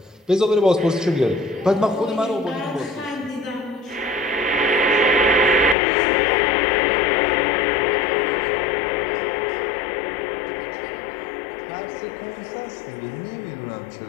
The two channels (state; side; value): drops out; right; at 5.8 s